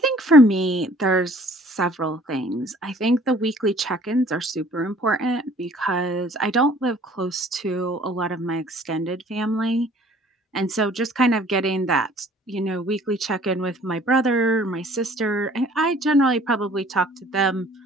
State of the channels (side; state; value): both; normal; correlation 0.54